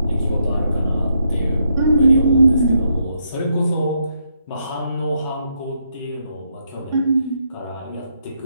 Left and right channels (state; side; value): inverted; both; correlation -0.78